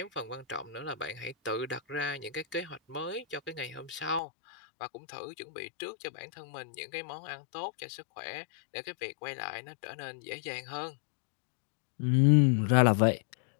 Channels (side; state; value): right; drops out; at 4.2 s